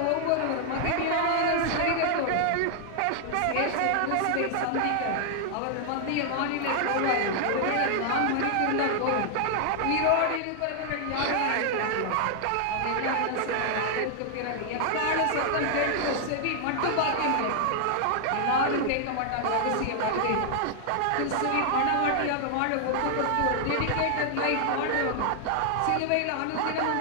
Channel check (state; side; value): different; both; correlation 0.00